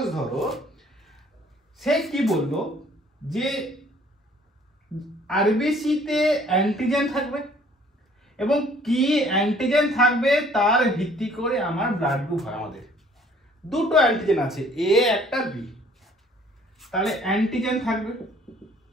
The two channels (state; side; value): normal; both; correlation 0.57